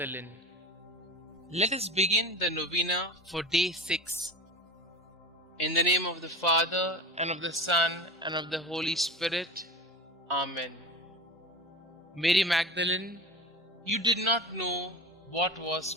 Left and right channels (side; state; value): both; normal; correlation 0.32